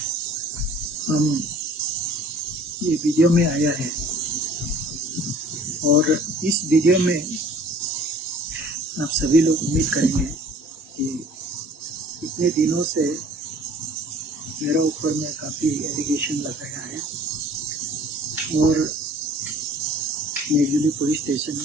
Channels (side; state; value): both; normal; correlation 0.51